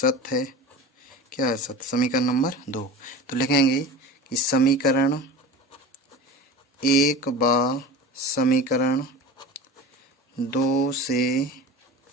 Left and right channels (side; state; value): both; normal; correlation 0.34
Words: है। क्या है? सत्य। समीकरण नंबर 2। तो लिखेंगे कि समीकरण एक बार समीकरण 2 से